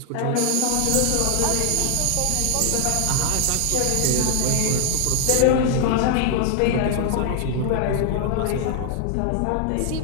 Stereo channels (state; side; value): different; both; correlation 0.00